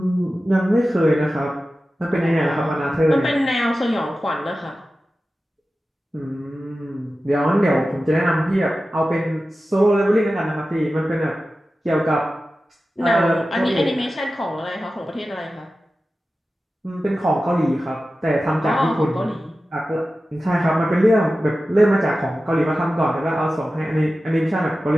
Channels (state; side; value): normal; both; correlation 0.94